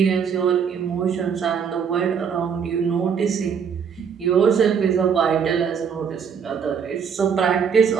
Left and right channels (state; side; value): quieter; left; 6.9 dB